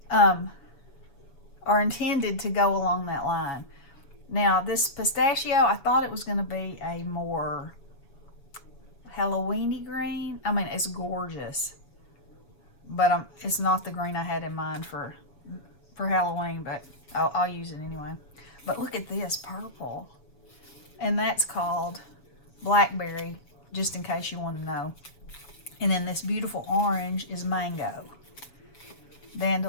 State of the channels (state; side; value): late; right; 7.2 ms